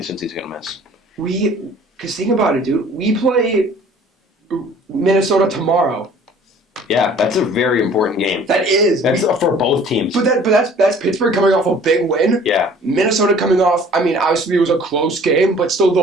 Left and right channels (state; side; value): normal; both; correlation 0.51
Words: Cincy's going to miss. Because think about it, dude. We play Minnesota tomorrow. Yeah, that's a very important game. That is. That's for both teams. But that's Pittsburgh coming off a big win. Yeah. Minnesota coming off. I mean, obviously it was a close game, but still